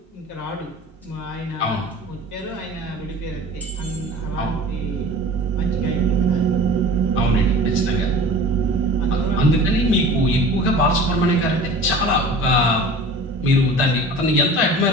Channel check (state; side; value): normal; both; correlation 0.40